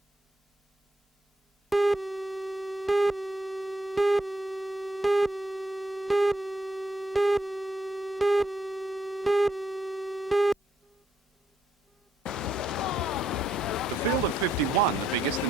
The field of 51, the biggest in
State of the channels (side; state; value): both; normal; correlation 0.76